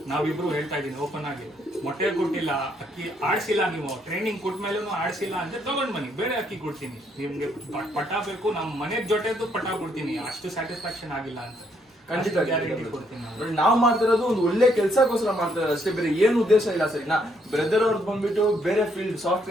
ನಾವಿಬ್ರು ಹೇಳ್ತಾ ಇದೀನಿ ಓಪನ್ ಆಗಿ, ಮೊಟ್ಟೆ ಕೊಟ್ಟಿಲ್ಲ, ಅಕ್ಕಿ ಆಡ್ಸಿಲ್ಲ, ನೀವು ಟ್ರೈನಿಂಗ್ ಕೊಟ್ಮೇಲೆ ಆಡ್ಸಿಲ್ಲ ಅಂದ್ರೆ ತಗೊಂಡ್ ಬನ್ನಿ, ಬೇರೆ ಅಕ್ಕಿ ಕೊಡ್ತೀನಿ ನಿಮ್ಗೆ. ಪಟ ಬೇಕು, ನಮ್ಮ ಮನೆ ಜೊತೆದು ಪಟ ಕೊಡ್ತೀನಿ, ಅಷ್ಟು ಸ್ಯಾಟಿಸ್ಫ್ಯಾಕ್ಷನ್ ಆಗಿಲ್ಲ ಅಂತ ಖಂಡಿತ ಗ್ಯಾರಂಟಿ ಕೊಡ್ತೀನಿ. ನಾವು ಮಾಡ್ತಿರೋದು ಒಂದು ಒಳ್ಳೆ ಕೆಲಸಕ್ಕೋಸ್ಕರ ಮಾಡ್ತಿರೋದು ಅಷ್ಟೇ, ಬೇರೆ ಏನು ಉದ್ದೇಶ ಇಲ್ಲ ಸರಿನಾ. ಬ್ರದರ್ ಅವ್ರದ್ದು ಬಂದ್ಬಿಟ್ಟು ಬೇರೆ ಫೀಲ್ಡ್,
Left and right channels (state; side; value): normal; both; correlation 0.72